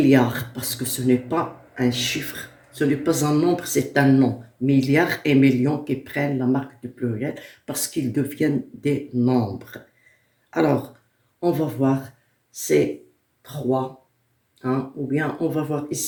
parce que ce n'est pas un chiffre, ce n'est pas un nombre, c'est un nom. Milliards et millions qui prennent la marque du pluriel parce qu'ils deviennent des nombres. Alors, on va voir ces 3, ou bien on va voir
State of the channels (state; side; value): identical; both; correlation 1.00